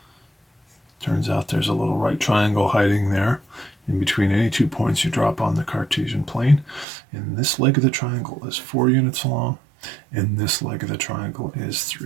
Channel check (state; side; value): drops out; left; at 6.9 s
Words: Turns out there's a little right triangle hiding there in between any 2 points you drop on the Cartesian plane. And this leg of the triangle is 4 units long, and this leg of the triangle is